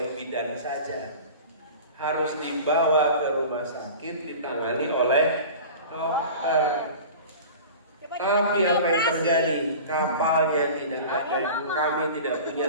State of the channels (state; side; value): inverted; both; correlation -0.37